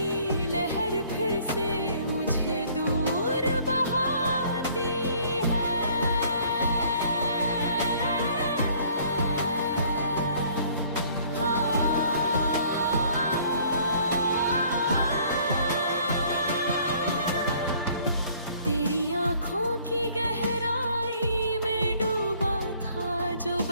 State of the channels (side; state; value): both; inverted; correlation -0.57